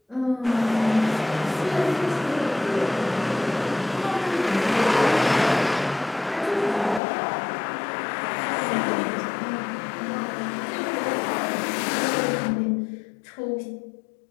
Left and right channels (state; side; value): drops out; right; at 7.0 s